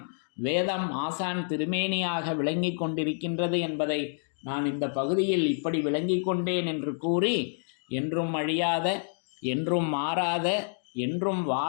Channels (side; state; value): right; silent; digital silence